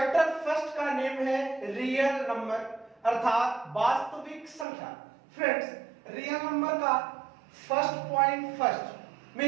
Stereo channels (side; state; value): left; drops out; at 4.7 s